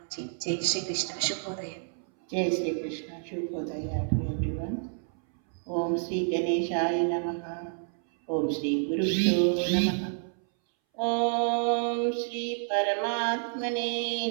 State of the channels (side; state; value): left; silent; 58 dB below the other